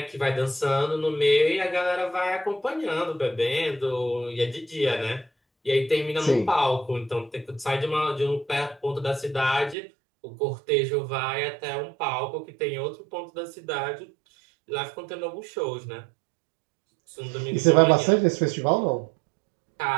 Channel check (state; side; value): drops out; left; at 9.8 s